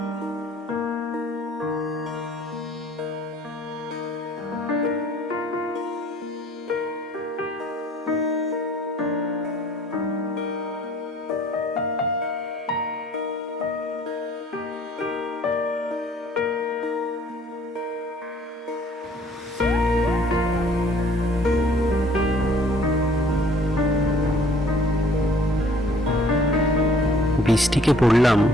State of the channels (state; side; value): normal; both; correlation 0.56